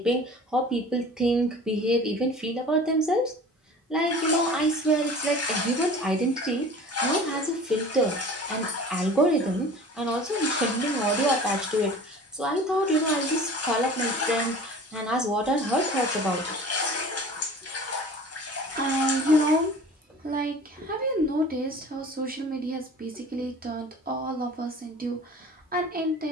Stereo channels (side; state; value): both; normal; correlation 0.42